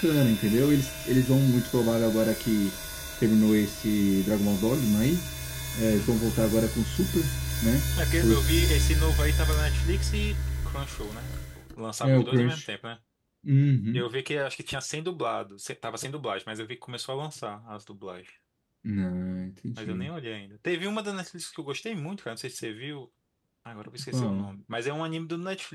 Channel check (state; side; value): identical; both; correlation 1.00